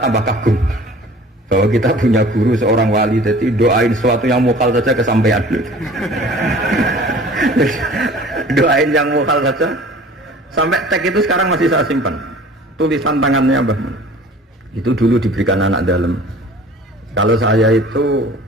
kagum bahwa kita punya guru seorang wali, jadi doain sesuatu yang mukal saja kesampaian. Doain yang mukal saja sampai teks itu sekarang masih saya simpan, tulisan tangannya Mbah Mun. Itu dulu diberikan anak dalam. Kalau saya itu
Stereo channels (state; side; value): normal; both; correlation 0.46